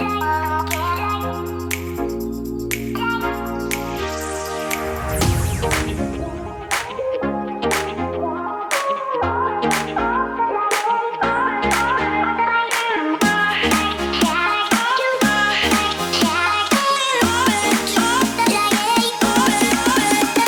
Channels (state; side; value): identical; both; correlation 1.00